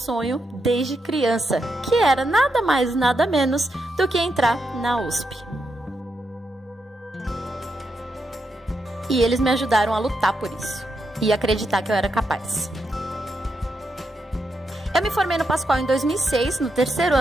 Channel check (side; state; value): both; normal; correlation 0.83